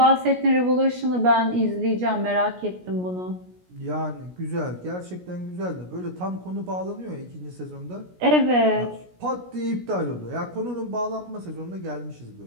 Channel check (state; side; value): late; left; 17 ms